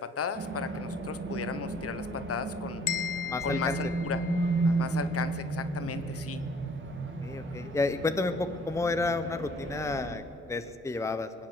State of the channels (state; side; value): normal; both; correlation 0.57